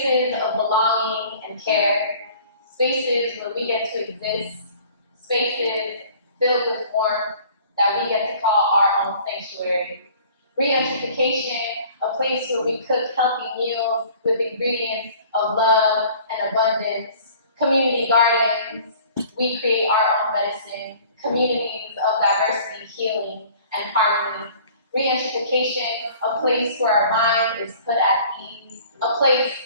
of belonging and care. Spaces where we get to exist. Spaces filled with warmth that we get to call our own sanctuary. Re-education, a place where we cook healthy meals with ingredients of love and abundance. Community gardens, we create our own medicine. Communities of diversity, healing, and harmony. Re-education, a place where our mind is put at ease, a place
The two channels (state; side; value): inverted; both; correlation -0.50